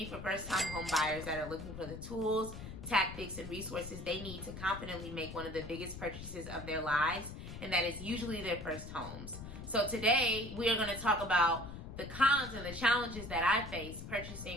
for first-time home buyers that are looking for the tools, tactics, and resources they need to confidently make one of the biggest purchases of their lives, and that is usually their first homes. So today we are going to talk about the cons and the challenges that I face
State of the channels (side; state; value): left; noise; rumble, 10 dB below the sound